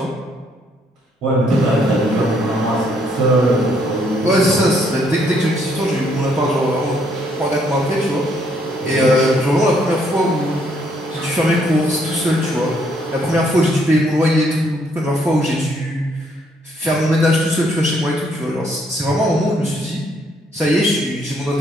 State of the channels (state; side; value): normal; both; correlation 0.69